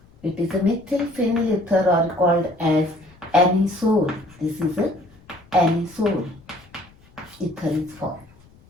It is a methyl phenyl ether or called as anisole. This is a anisole ether is formed.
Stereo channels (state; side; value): noise; left; rumble, 27 dB below the sound